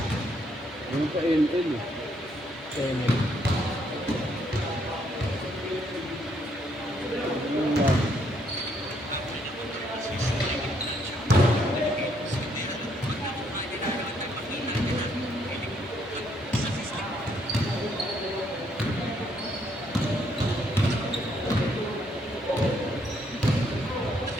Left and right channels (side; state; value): both; normal; correlation 0.71